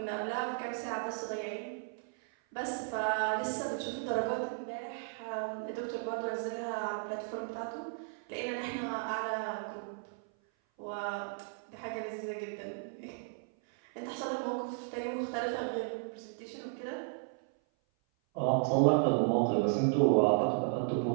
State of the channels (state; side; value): silent; left; 55 dB below the other